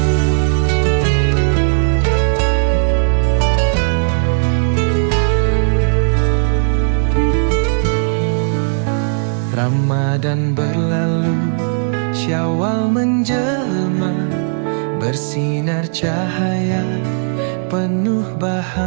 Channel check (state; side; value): silent; left; 67 dB below the other